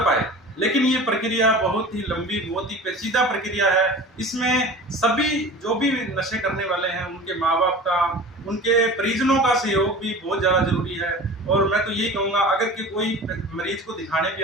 लेकिन ये प्रक्रिया बहुत ही लंबी, बहुत ही पेचीदा प्रक्रिया है। इसमें सभी जो भी नशे करने वाले हैं, उनके माँ बाप का, उनके परिजनों का सहयोग भी बहुत ज़्यादा जरूरी है। और मैं तो यही कहूँगा, अगर कि कोई मरीज को दिखाने भी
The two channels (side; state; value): both; normal; correlation 0.37